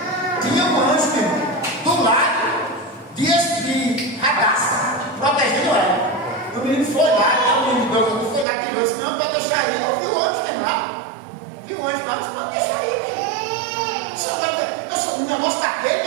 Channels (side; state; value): left; drops out; at 8.5 s